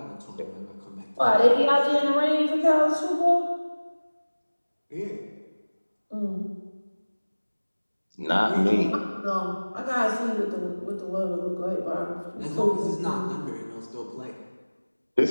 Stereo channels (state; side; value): inverted; both; correlation -1.00